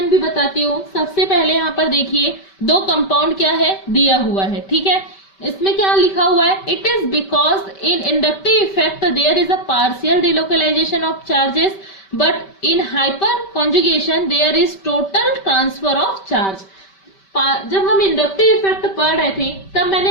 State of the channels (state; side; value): late; right; 5.2 ms